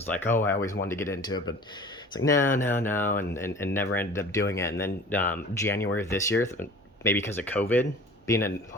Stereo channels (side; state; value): both; normal; correlation 0.43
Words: like, oh, I always wanted to get into it, but it's like, no, and never ended up doing it. And then January of this year, maybe because of COVID,